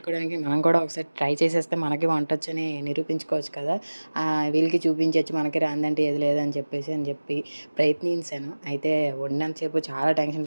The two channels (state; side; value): inverted; both; correlation -1.00